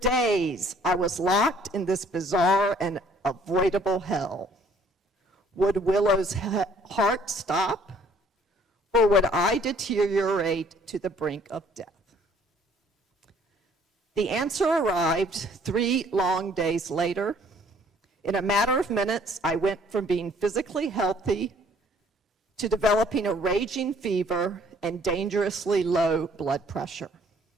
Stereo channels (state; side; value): normal; both; correlation 0.59